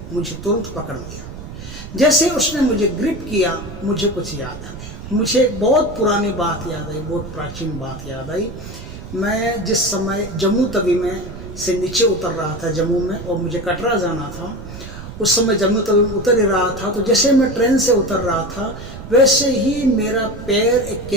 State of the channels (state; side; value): noise; right; rumble, 12 dB below the sound